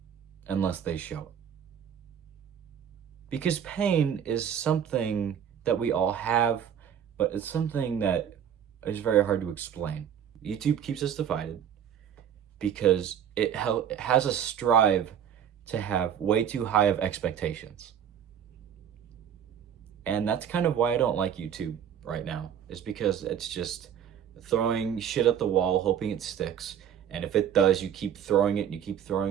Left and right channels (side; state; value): left; quieter; 8.8 dB